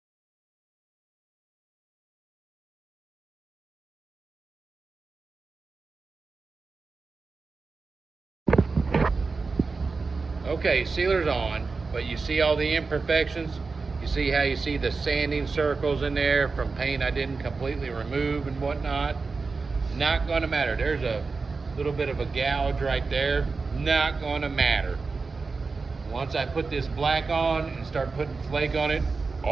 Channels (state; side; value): quieter; left; 4.3 dB